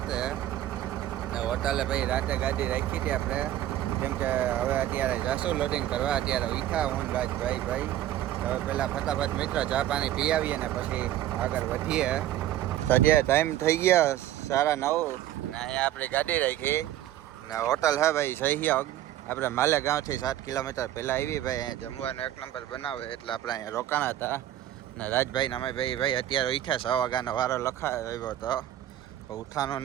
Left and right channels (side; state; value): left; quieter; 12.8 dB